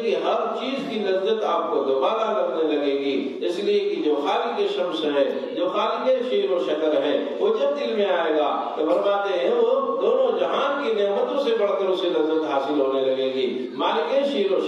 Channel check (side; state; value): both; identical; correlation 1.00